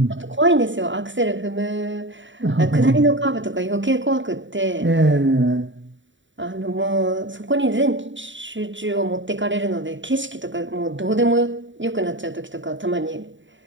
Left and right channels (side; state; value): left; late; 0.55 ms